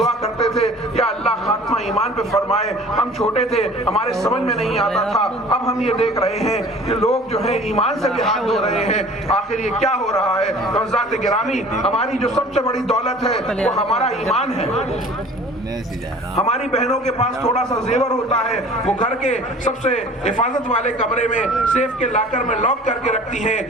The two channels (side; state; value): both; normal; correlation 0.46